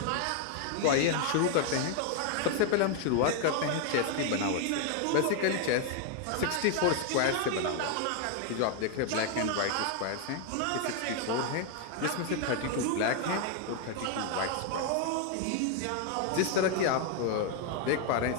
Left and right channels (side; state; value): both; different; correlation 0.01